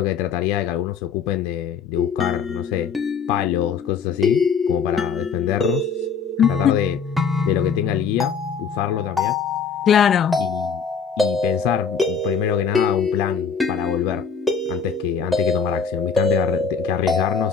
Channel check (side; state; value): right; quieter; 6.1 dB